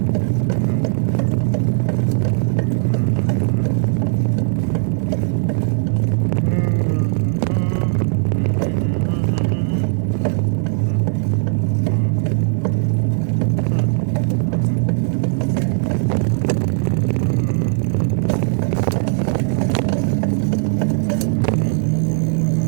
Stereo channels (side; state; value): left; silent; 57 dB below the other